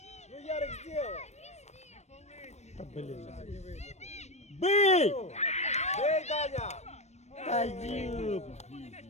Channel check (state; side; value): late; right; 0.32 ms